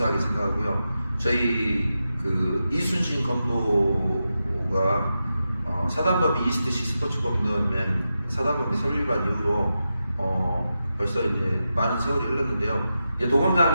생각하고요. 저희 그 이순신 검도가 사단법인 이스트시 스포츠검도연맹 사단법인 설립한 이후로 벌써 이제 많은 세월이 흘렀는데요. 이제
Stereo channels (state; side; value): inverted; both; correlation -0.90